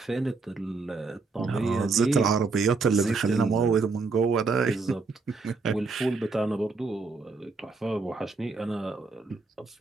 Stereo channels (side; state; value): left; quieter; 4.2 dB